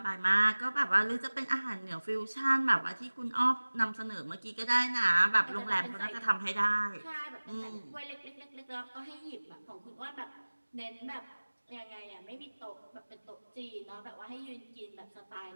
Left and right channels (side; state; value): both; inverted; correlation -1.00